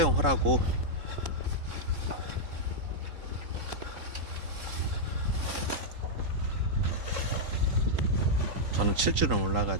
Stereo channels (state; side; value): late; left; 3.8 ms